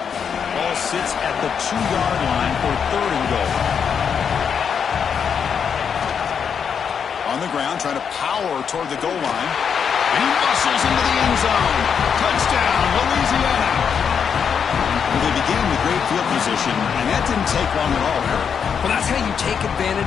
Ball sits at the 2-yard line for 3rd and goal. On the ground, trying to power toward the goal line. And he muscles into the end zone. Touchdown, Louisiana. Well, they began with great field position, and that didn't take long at all here. Well, that's how you take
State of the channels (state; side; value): quieter; right; 7.1 dB